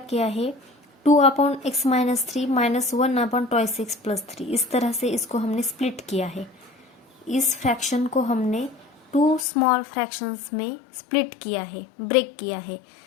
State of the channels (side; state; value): right; drops out; at 9.5 s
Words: किया है, 2 upon x minus 3 minus 1 upon twice x plus 3, इस तरह से इसको हमने स्प्लिट किया है। इस फ्रैक्शन को हमने 2 स्मॉल फ्रैक्शंस में स्प्लिट किया है, ब्रेक किया है,